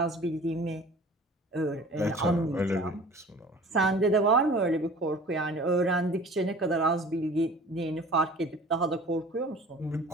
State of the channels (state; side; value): normal; both; correlation 0.45